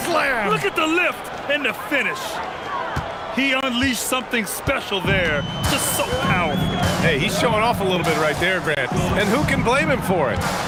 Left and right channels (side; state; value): both; identical; correlation 1.00